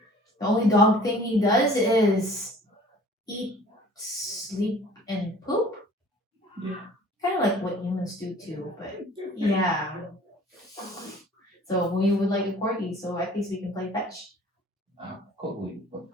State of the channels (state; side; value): normal; both; correlation 0.49